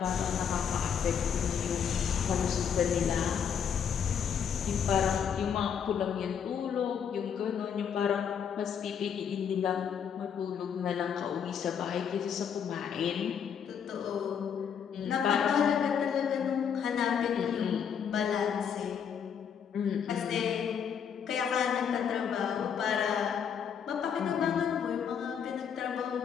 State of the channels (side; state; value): right; quieter; 7.7 dB